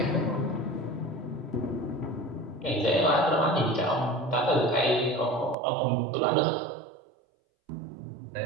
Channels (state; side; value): drops out; left; at 5.6 s